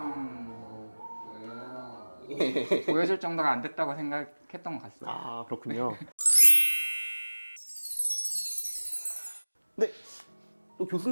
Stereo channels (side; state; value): both; inverted; correlation -1.00